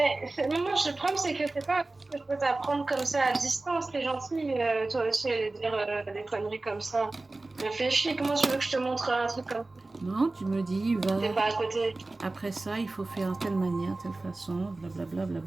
moi, le problème, c'est que c'est pas que je peux t'apprendre comme ça à distance. T'es gentil, toi aussi, aller dire des conneries comme ça. Réfléchis, comment tu veux que je te montre un truc comme ça? Non, tu me dis, va. T'es pas à côté. Après ça, il faut faire telle manière, telle façon, blablabla,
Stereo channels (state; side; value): quieter; left; 3.1 dB